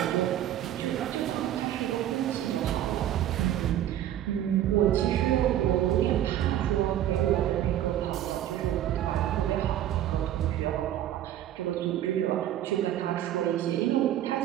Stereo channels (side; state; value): left; quieter; 11.9 dB